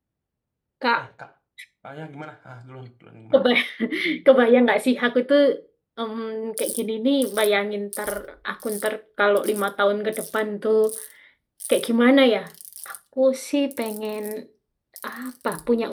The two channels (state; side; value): identical; both; correlation 1.00